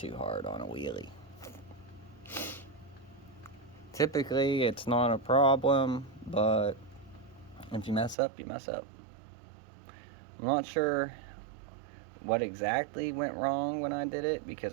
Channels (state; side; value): drops out; left; at 8.2 s